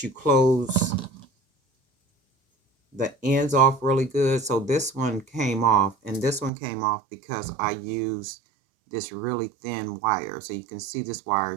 you close the ends off really good. So this one came off, and this one came off because I used this really thin wire. So you can see this wire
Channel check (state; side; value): drops out; left; at 6.5 s